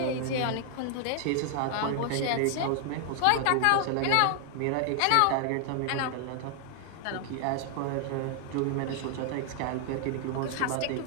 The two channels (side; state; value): both; different; correlation 0.00